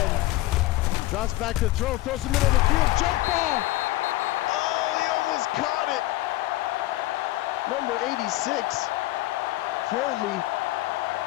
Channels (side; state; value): right; quieter; 17.4 dB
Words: Drops back to throw, throws in the middle of the field, jump ball. Oh, he almost caught it. Number 86, Foley,